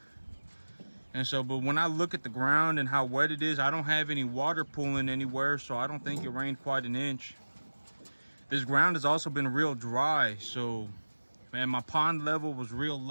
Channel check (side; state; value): both; inverted; correlation -1.00